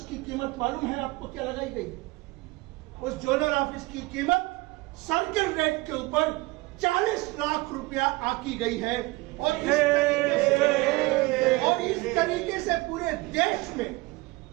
की कीमत मालूम है आपको क्या लगाई गई? उस जोनल ऑफिस की कीमत सर्किल रेट के ऊपर 40 लाख रुपया आकी गई है। और इस तरीके से पूरे देश में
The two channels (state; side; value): quieter; left; 22.1 dB